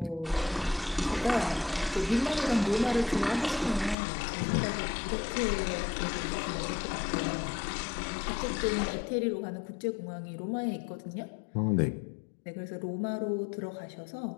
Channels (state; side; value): drops out; right; at 4.0 s